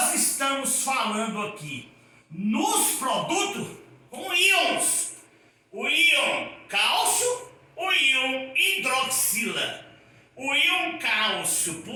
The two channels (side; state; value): both; identical; correlation 1.00